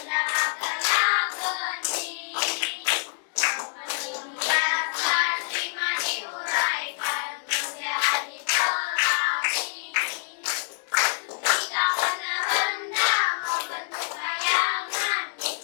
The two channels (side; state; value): right; silent; digital silence